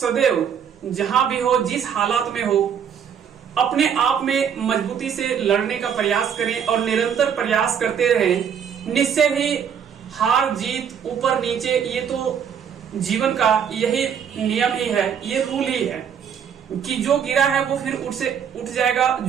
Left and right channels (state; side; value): quieter; left; 7.9 dB